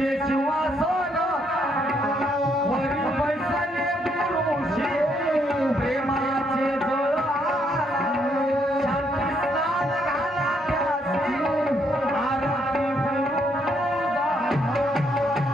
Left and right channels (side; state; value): both; normal; correlation 0.72